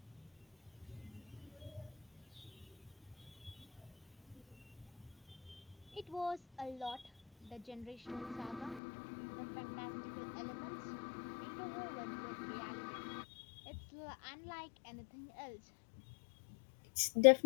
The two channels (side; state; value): right; drops out; at 8.8 s